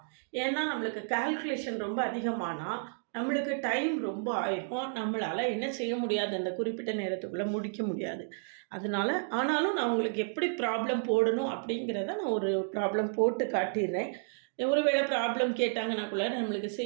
ஏன்னா நம்மளுக்கு கால்குலேஷன் ரொம்ப அதிகமானால் நம்மளுக்கு டைம் ரொம்ப ஆயிருக்கும், நம்மளால் என்ன செய்ய முடியாது, அந்த குறிப்பிட்ட நேரத்துக்குள்ளே முடிக்க முடியாது. அதனால் ஆனாலும் நான் உங்களுக்கு எப்படி ப்ராப்ளம் போடணும் அப்படிங்கிறத நான் ஒரு ப்ராப்ளம் போட்டு காட்டிடுறேன். ஒருவேளை ப்ராப்ளம் கேட்டாங்கன்னா கூட நம்மளுக்கு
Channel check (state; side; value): silent; left; digital silence